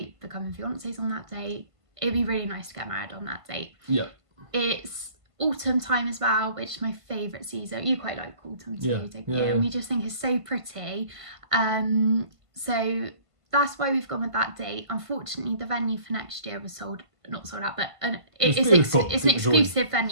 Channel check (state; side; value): late; left; 1.5 ms